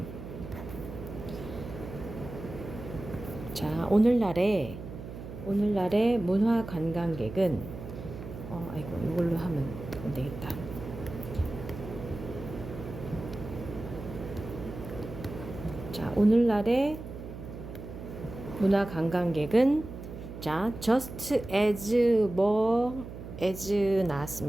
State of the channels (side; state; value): right; noise; hum, 11 dB below the sound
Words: 자, 오늘날의 문화 관광객은 이걸로 하면 안 되겠다. 자, 오늘날의 문화 관광객은 자, just as